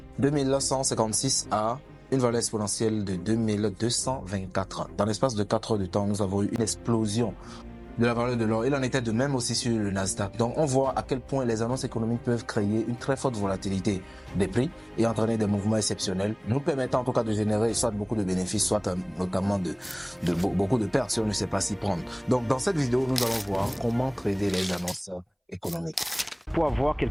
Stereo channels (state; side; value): identical; both; correlation 1.00